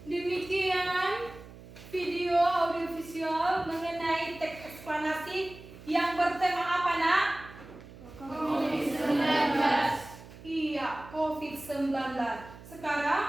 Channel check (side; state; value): right; noise; hum, 18 dB below the sound